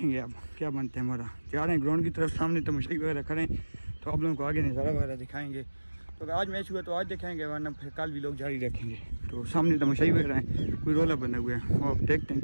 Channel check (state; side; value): inverted; both; correlation -1.00